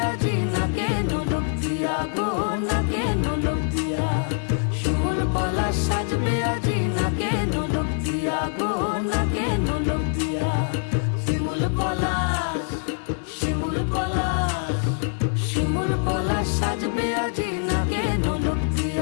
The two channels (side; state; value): right; silent; 62 dB below the other